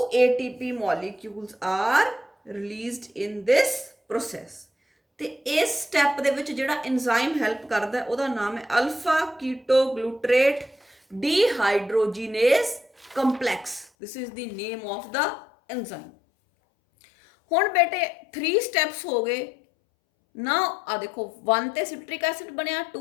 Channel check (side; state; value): right; drops out; at 13.9 s